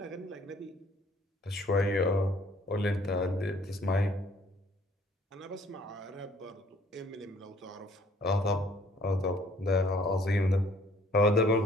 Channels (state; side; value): normal; both; correlation 0.59